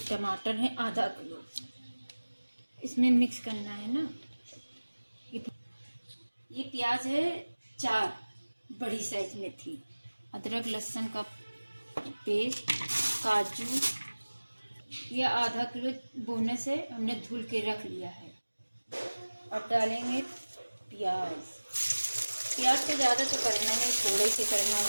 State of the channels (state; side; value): inverted; both; correlation -1.00